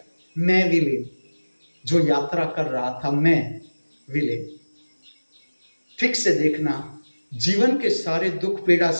मैं विलीन, जो यात्रा कर रहा था, मैं विलीन। ठीक से देखना, जीवन के सारे दुख, पीड़ा,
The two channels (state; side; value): inverted; both; correlation -1.00